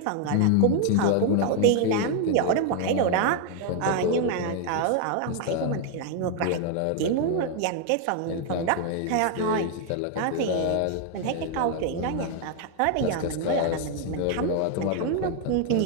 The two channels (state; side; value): different; both; correlation 0.00